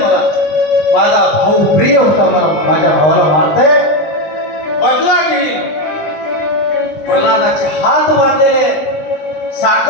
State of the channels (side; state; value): right; late; 20 ms